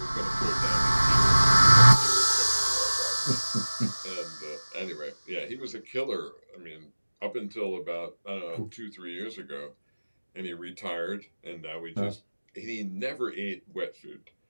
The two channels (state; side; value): inverted; both; correlation -1.00